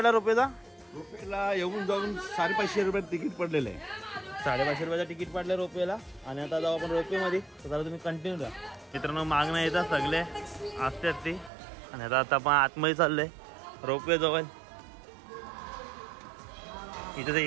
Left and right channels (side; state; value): left; drops out; at 11.5 s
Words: रोपवेचा? रोपेला येऊन जाऊन 550 रुपयात तिकीट पडलेलं आहे. 550 रुपयाचं तिकीट पडलं रोपवेला आणि आता जाऊ आपण रोपवेमध्ये. तर जरा तुम्ही कंटिन्यू राहा. मित्रांनो मागणं येतात सगळे आस्ते आणि आता आपण आतमध्ये चाललोय रोपवे जवळ. इथं तर